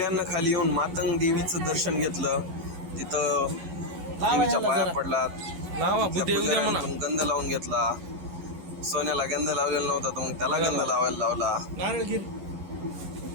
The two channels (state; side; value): late; left; 11 ms